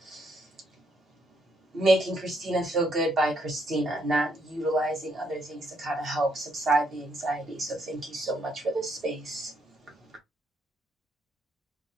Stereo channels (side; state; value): both; normal; correlation 0.74